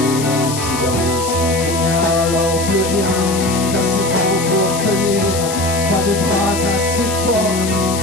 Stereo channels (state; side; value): noise; left; hiss, 8 dB below the sound